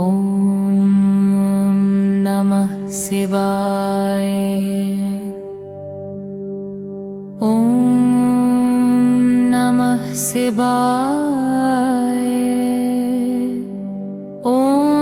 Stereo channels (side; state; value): both; identical; correlation 1.00